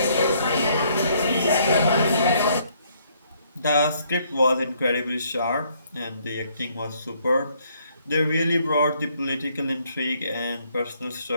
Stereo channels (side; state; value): both; inverted; correlation -0.67